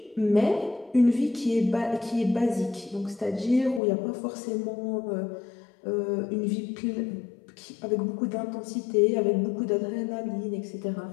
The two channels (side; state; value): right; drops out; at 3.8 s